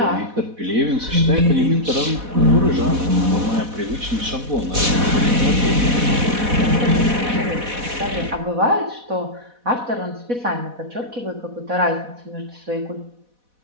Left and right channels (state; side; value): late; left; 4.1 ms